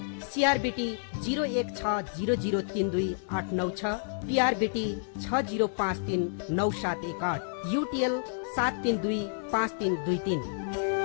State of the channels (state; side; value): silent; right; 58 dB below the other